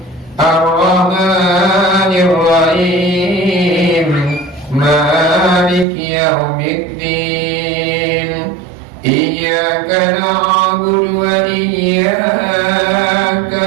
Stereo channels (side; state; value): left; drops out; at 5.9 s